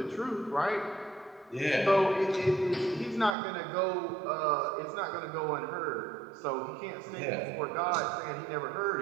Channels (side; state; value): left; drops out; at 3.4 s